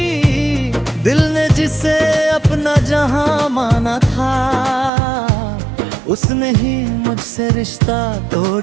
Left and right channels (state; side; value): drops out; left; at 4.9 s